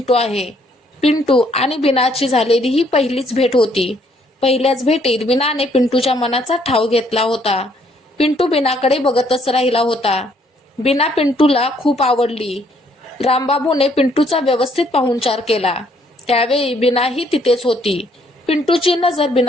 आहे. पिंटू आणि बीनाची झालेली ही पहिलीच भेट होती. पहिल्याच भेटीत बीनाने पिंटूच्या मनाचा ठाव घेतला होता. पिंटू बीनाकडे बघतच राहिला होता. बीना पिंटूला खूप आवडली. रामबाबूने पिंटूचा व्यवस्थित पाहुणचार केला. त्यावेळी बीनाही तिथेच होती. पिंटूची नजर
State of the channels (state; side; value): normal; both; correlation 0.67